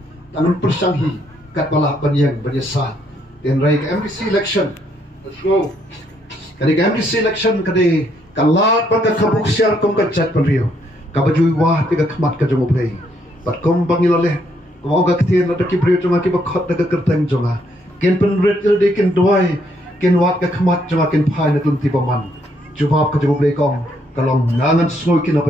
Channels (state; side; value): normal; both; correlation 0.72